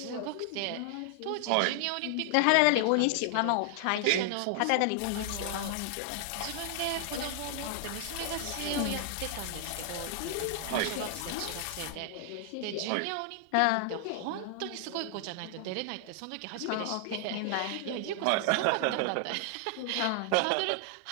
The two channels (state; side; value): different; both; correlation 0.00